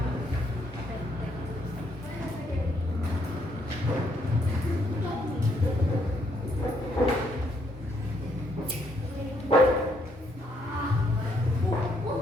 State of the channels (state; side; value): normal; both; correlation 0.72